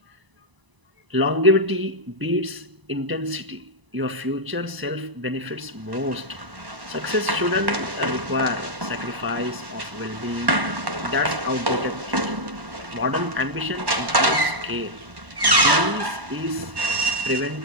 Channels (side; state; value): left; late; 1.0 ms